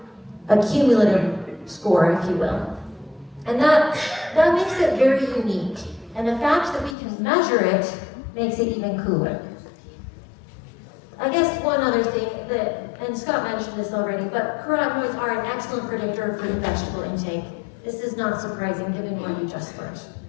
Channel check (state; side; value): drops out; right; at 7.0 s